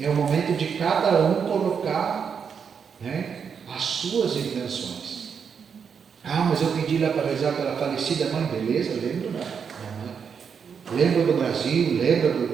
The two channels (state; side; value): quieter; left; 6.7 dB